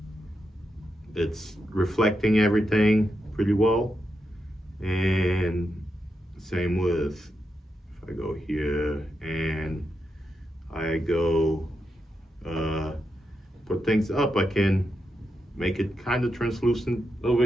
it's reflecting everything pretty well. And same with, if I go here and I go put things up, I can make it kind of translucent over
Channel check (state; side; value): normal; both; correlation 0.86